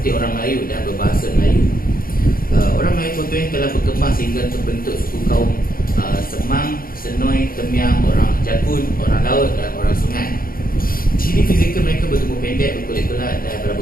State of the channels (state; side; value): late; right; 0.42 ms